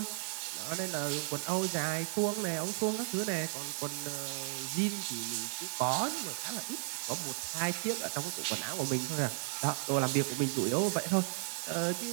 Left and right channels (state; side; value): silent; left; digital silence